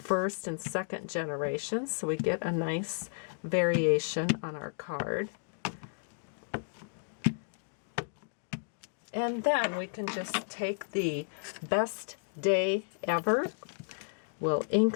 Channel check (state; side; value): silent; right; digital silence